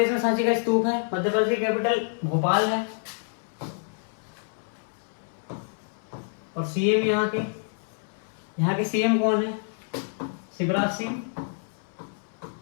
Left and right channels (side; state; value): right; silent; 59 dB below the other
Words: में सांची का स्तूप है। मध्य प्रदेश की कैपिटल भोपाल है। और सीएम यहाँ के सीएम कौन है, शिवराज सिंह